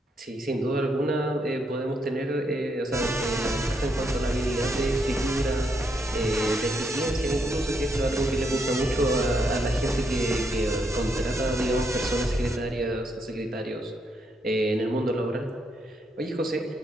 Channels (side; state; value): both; normal; correlation 0.77